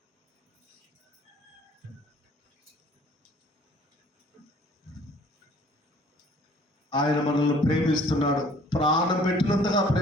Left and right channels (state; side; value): normal; both; correlation 0.55